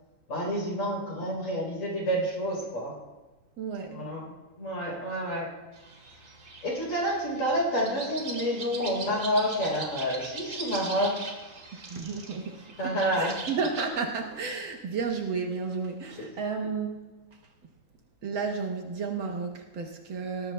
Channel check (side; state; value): right; late; 3.9 ms